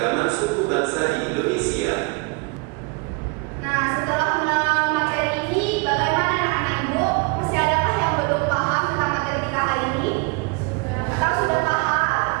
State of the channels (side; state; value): left; quieter; 30.4 dB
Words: suku bangsa di Indonesia. Nah, setelah mengenal materi ini, bagaimana anak-anak ibu? Masih adakah yang belum paham tentang materi kita hari ini? Atau sudah paham?